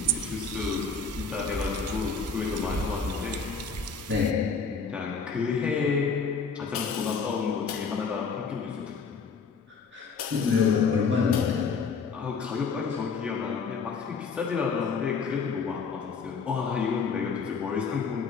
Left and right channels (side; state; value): right; quieter; 4.9 dB